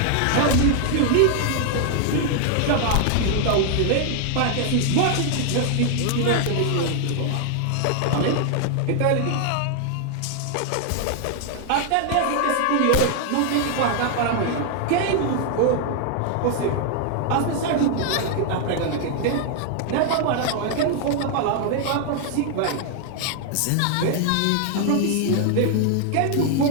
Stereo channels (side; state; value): both; different; correlation 0.00